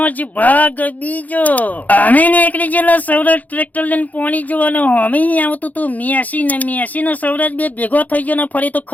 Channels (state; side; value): late; right; 0.078 ms